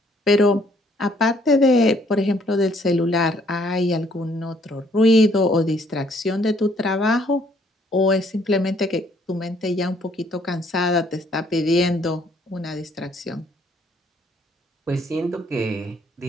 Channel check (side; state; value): both; normal; correlation 0.65